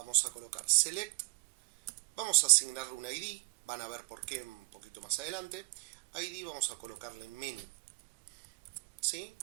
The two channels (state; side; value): quieter; left; 29.9 dB